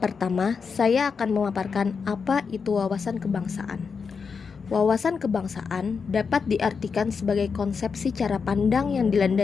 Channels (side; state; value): right; quieter; 5.6 dB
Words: Pertama, saya akan memaparkan apa itu wawasan kebangsaan. Wawasan kebangsaan dapat diartikan sebagai konsepsi cara pandang yang